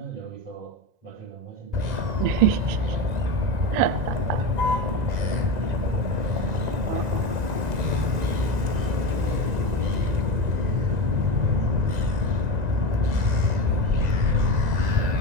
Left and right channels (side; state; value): left; late; 1.9 ms